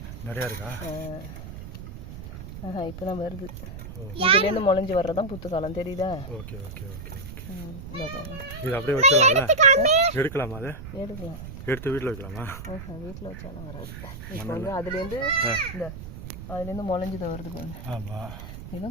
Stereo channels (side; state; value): right; noise; rumble, 11 dB below the sound